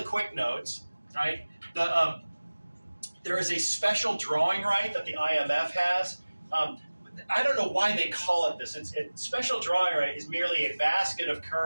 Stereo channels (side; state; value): both; inverted; correlation -1.00